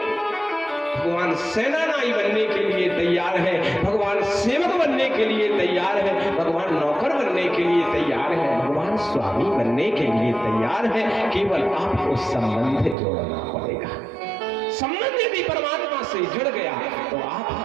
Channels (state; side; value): drops out; left; at 13.0 s